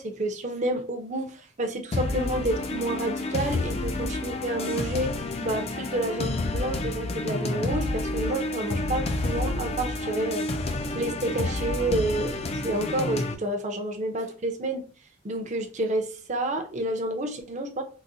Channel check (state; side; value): normal; both; correlation 0.44